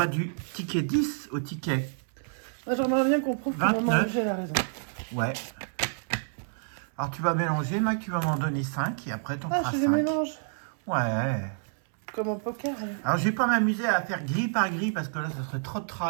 du ticket 10 au ticket. Moi, j'aimerais bien qu'on prouve que Maman MG a raison. Ouais. Alors tu vas mélanger, Mac, tu vas m'en donner 5 et après t'en feras 5. Je les mélange. Ouais. Comme au poker. Hein. Alors je vais pas m'amuser à faire grille par grille parce que là ça serait trop de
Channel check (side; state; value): left; silent; 59 dB below the other